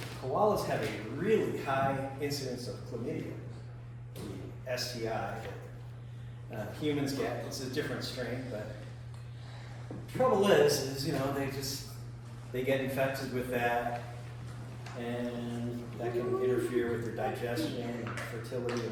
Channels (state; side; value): identical; both; correlation 1.00